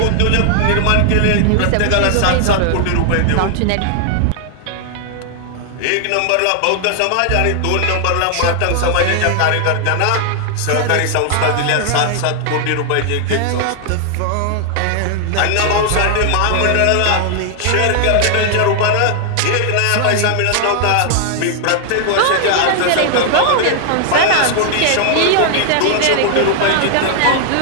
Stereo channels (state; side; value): different; both; correlation 0.00